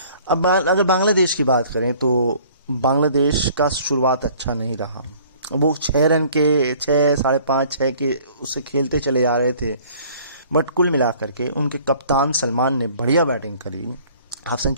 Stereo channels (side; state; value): both; inverted; correlation -0.54